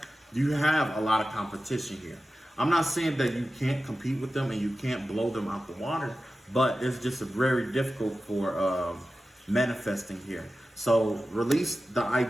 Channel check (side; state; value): both; normal; correlation 0.94